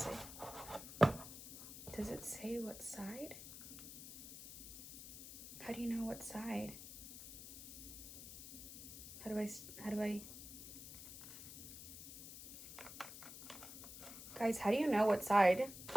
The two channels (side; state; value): left; noise; hiss, 11 dB below the sound